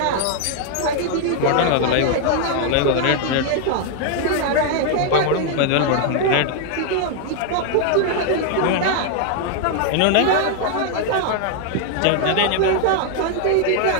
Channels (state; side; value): different; both; correlation 0.00